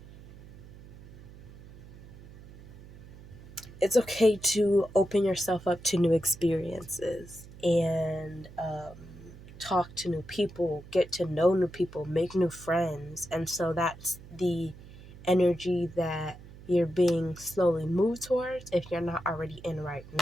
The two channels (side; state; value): right; noise; hum, 18 dB below the sound